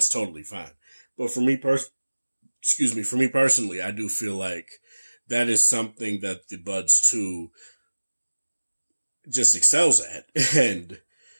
totally fine. But for me personally, I do feel like that is something that the Buds 2 just excels at. And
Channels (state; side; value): inverted; both; correlation -1.00